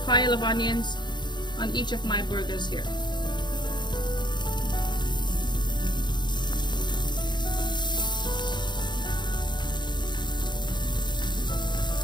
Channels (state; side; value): late; right; 0.21 ms